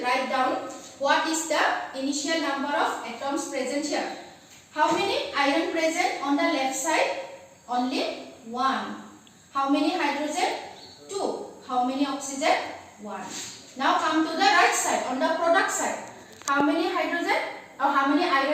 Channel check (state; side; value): identical; both; correlation 1.00